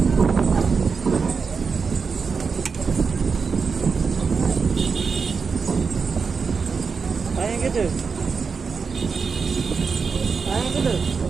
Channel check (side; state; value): left; quieter; 5.3 dB